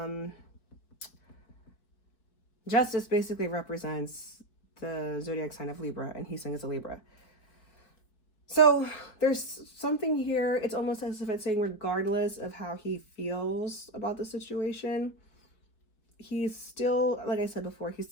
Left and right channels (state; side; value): late; right; 4.6 ms